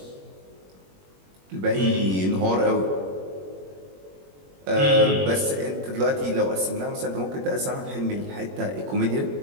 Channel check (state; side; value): late; left; 21 ms